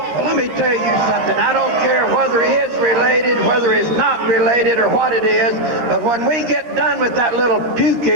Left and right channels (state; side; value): late; left; 13 ms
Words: Well, let me tell you something. I don't care whether he is related, whether he's not related, or what it is, but when we get done with that little